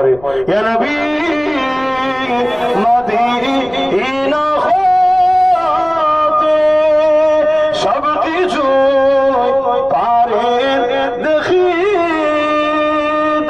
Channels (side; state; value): left; noise; rumble, 23 dB below the sound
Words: ইয়া নবী মদিনা হতে সব কিছু পারে দেখিতে,